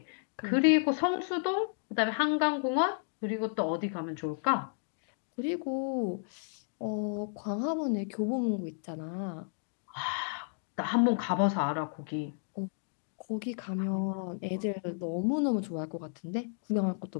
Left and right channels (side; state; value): right; silent; digital silence